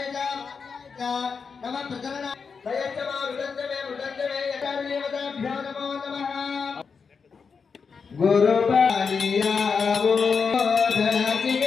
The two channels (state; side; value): quieter; right; 5.5 dB